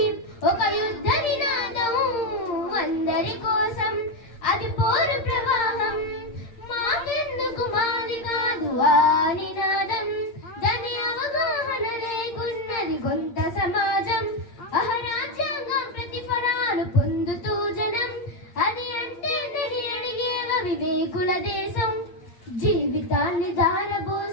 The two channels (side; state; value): right; late; 8.6 ms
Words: ఒక యుద్ధ నినాదం అందరి కోసం, అది పోరు ప్రవాహం. మాకెందుకు మాది కాదు ఆ నినాదం, దాని అవగాహన లేకున్నది కొంత సమాజం. అహరాజ్యాంగం ప్రతిఫలాలు పొందుతూ జనం, అది అంటే నని అడిగేవ వివేకుల దేశం. జీవితాన్ని